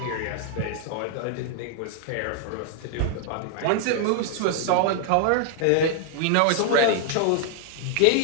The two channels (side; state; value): both; different; correlation 0.00